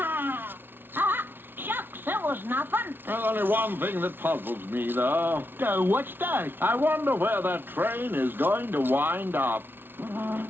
Shucks, it was nothing. There's only one thing that puzzles me, though. What's that? I wonder where that train is going to wind up.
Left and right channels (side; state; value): left; late; 0.10 ms